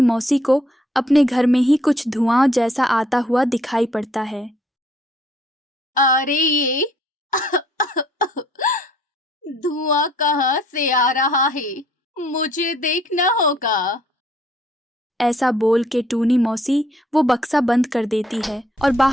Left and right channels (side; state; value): both; normal; correlation 0.64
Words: मौसी को अपने घर में ही कुछ धुआं जैसा आता हुआ दिखाई पड़ता है। अरे ये धुआं कहाँ से आ रहा है? मुझे देखना होगा। ऐसा बोल के टूनी मौसी वो बक्सा बंद कर देती है और